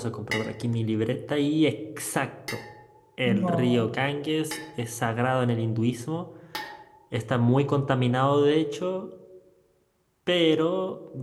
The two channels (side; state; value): both; identical; correlation 1.00